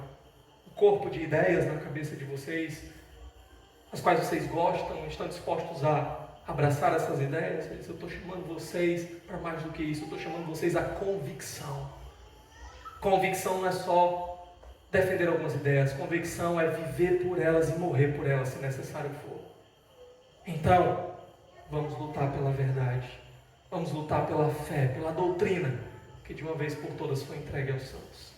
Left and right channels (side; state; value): both; identical; correlation 1.00